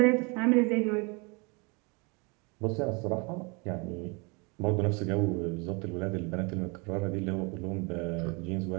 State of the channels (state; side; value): quieter; left; 30.4 dB